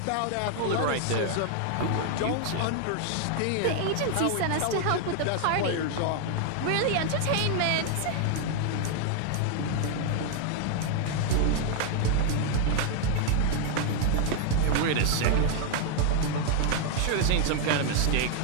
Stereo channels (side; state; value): both; different; correlation 0.00